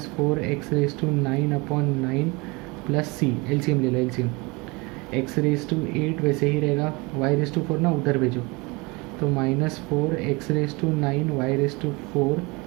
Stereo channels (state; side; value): quieter; left; 26.2 dB